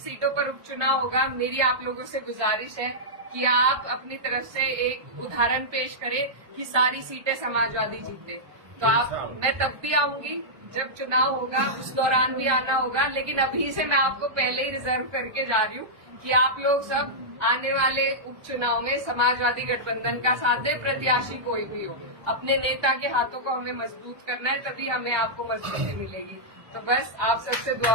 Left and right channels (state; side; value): late; left; 1.2 ms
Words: पर उपचुनाव होगा मेरी आप लोगों से गुजारिश है कि आप अपनी तरफ से एक उदाहरण पेश करें कि सारी सीटें समाजवादी जीते। तो मैं तब भी आऊंगी जब चुनाव होगा, उस दौरान भी आना होगा, लेकिन अभी से मैं आपको पहले ही रिजर्व करके जा रही हूँ कि आप लोग सब आने वाले उपचुनाव में समाजवादी गठबंधन का साथ दे, प्रत्याशी कोई भी हो, अपने नेता के हाथों को हमें मजबूत करना है, तभी हमें आपको मजबूती मिलेगी। तो बस आप सबसे